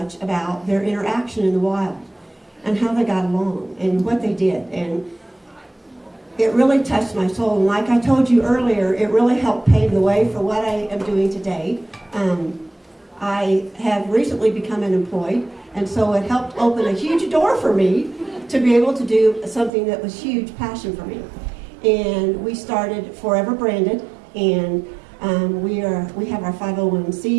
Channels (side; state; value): left; drops out; at 19.7 s